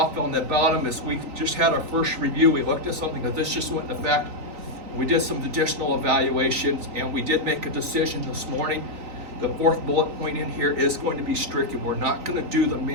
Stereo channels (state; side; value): late; left; 3.9 ms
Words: on the bottom is we just had our first review. We looked at something because this just went into effect. We did some additional evaluations and we did make a decision this morning. The 4th bullet point in here is going to be stricken. We're not going to do the